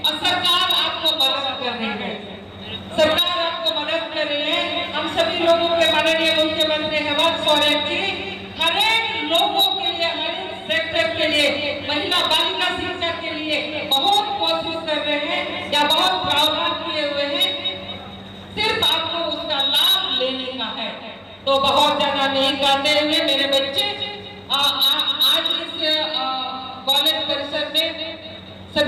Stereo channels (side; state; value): both; identical; correlation 1.00